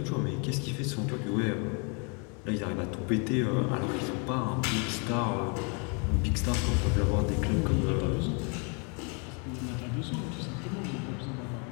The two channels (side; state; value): right; quieter; 35.4 dB